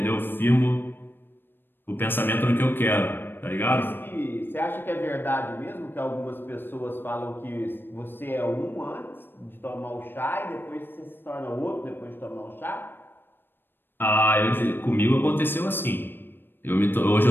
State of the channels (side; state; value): right; late; 0.098 ms